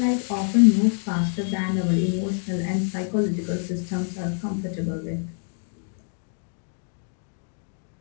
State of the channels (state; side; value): silent; right; 55 dB below the other